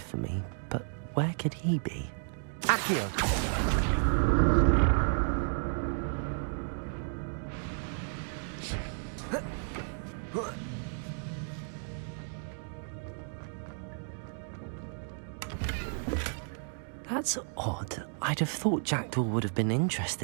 for me, but where could he be? Accio! That's odd. I'd have thought Jackdaw would have been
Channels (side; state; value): left; silent; 56 dB below the other